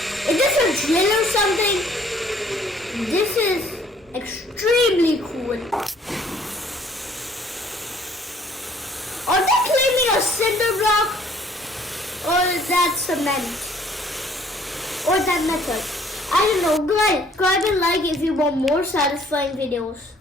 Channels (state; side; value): normal; both; correlation 0.59